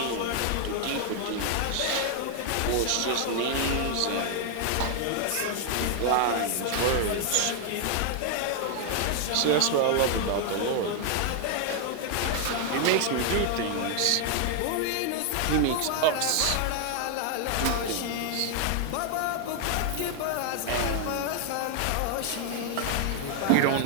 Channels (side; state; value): both; different; correlation 0.00